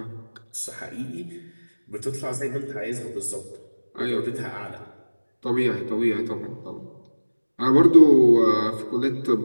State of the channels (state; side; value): inverted; both; correlation -1.00